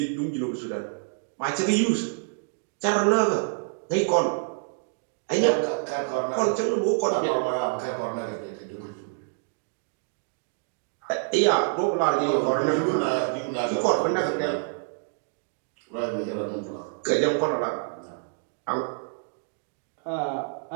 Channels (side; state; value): left; silent; digital silence